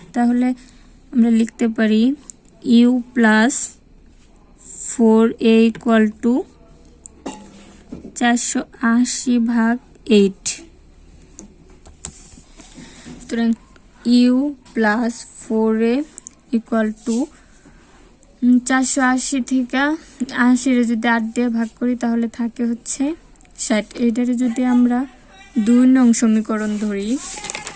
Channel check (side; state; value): both; identical; correlation 1.00